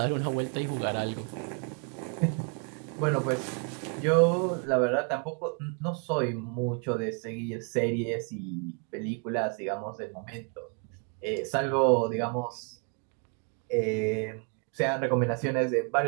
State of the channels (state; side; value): quieter; left; 37.8 dB